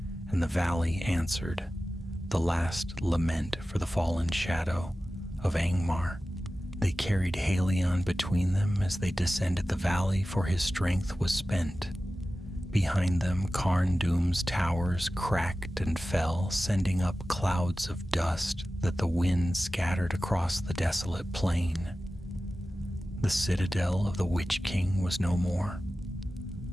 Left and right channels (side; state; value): both; normal; correlation 0.95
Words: and the valley answered, the last lament for the fallen shadow of Angmar. They carried Halion between them as they descended the valley, for his strength was spent. Behind them, Carn Dûm's towers cracked and fell, sending up clouds of dust that the wind scattered across the desolate plain. The citadel of the Witch King was no more.